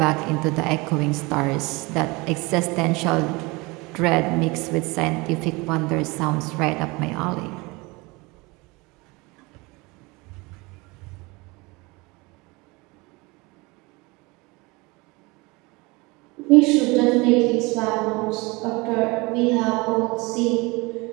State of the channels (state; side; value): quieter; left; 24.9 dB